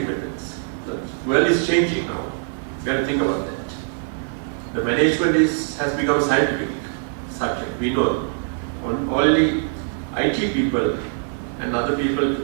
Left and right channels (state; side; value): silent; left; 64 dB below the other